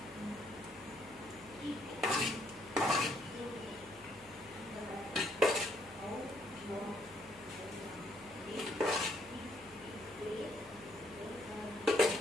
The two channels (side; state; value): left; noise; hum, 23 dB below the sound